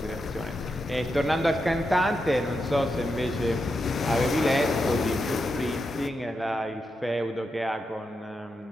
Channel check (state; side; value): normal; both; correlation 0.86